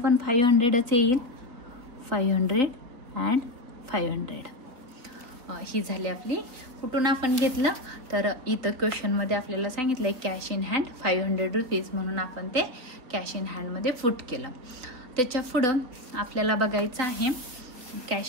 500च येईल, 500 अँड 500. ही झाली आपली. कुठून आपण घेतलं, तर इथं क्वेश्चनमध्ये आपल्याला सांगितलंय कॅश इन हँड 500 रुपीज, म्हणून आपण ते कॅश इन हँडमध्ये फुट केलं. त्याच्या पुढं आपल्याला बघायचं आहे,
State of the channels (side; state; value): left; late; 4.0 ms